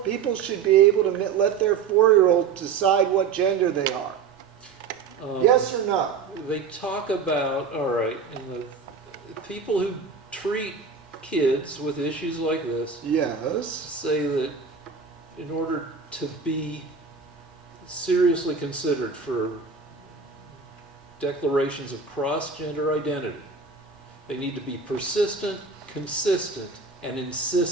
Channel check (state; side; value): quieter; left; 5.6 dB